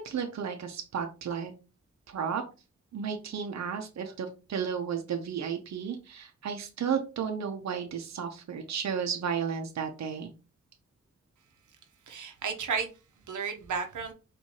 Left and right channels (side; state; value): left; quieter; 6.6 dB